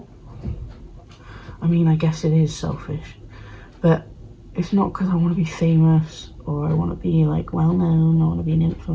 I mean, I guess it is selfish, but it's not because I want to be famous or I want to be like well known, I want to be an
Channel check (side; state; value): both; identical; correlation 1.00